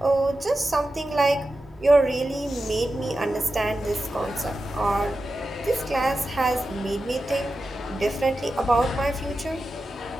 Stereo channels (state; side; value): normal; both; correlation 0.92